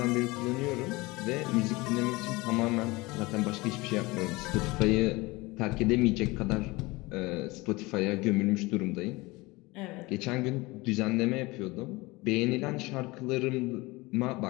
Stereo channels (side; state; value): right; quieter; 22.7 dB